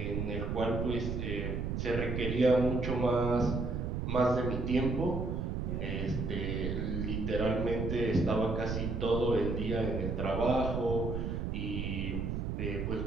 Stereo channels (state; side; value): noise; right; rumble, 2 dB below the sound